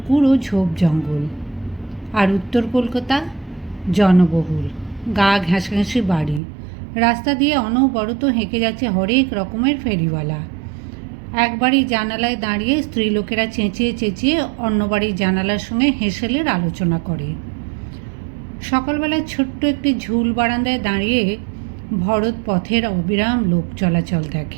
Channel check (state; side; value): drops out; left; at 6.4 s